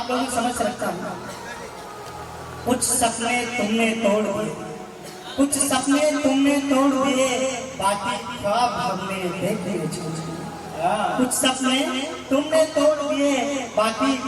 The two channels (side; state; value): both; identical; correlation 1.00